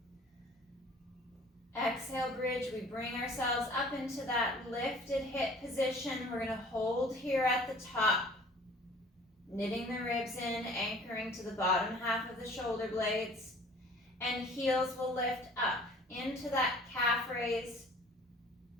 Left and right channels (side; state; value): both; normal; correlation 0.50